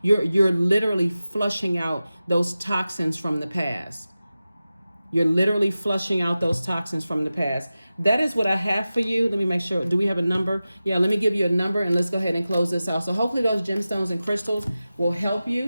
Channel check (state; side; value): inverted; both; correlation -0.95